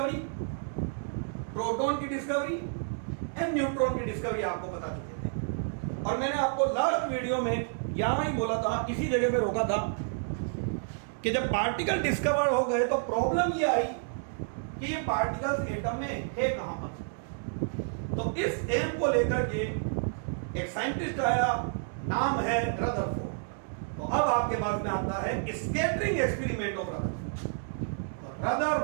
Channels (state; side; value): silent; left; digital silence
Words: प्रोटॉन की डिस्कवरी एंड न्यूट्रॉन की डिस्कवरी आपको बता चुके थे। और मैंने आपको लास्ट वीडियो में यहां ही बोला था, इसी जगह पे रोका था कि जब पार्टिकल डिस्कवर हो गए तो प्रॉब्लम ये आई कि ये पार्टिकल्स एटम में है कहां पर। तो इस एम को लेकर के एक साइंटिस्ट आया, नाम है रदरफोर्ड। तो अब आपके पास में आता है स्कैटरिंग एक्सपेरिमेंट ऑफ रदरफोर्ड। तो